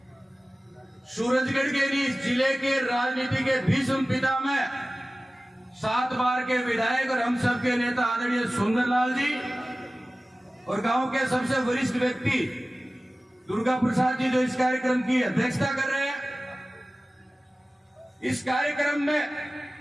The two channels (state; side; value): normal; both; correlation 0.97